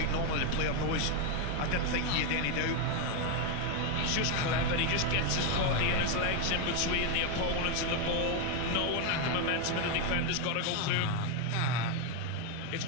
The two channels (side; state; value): both; different; correlation 0.01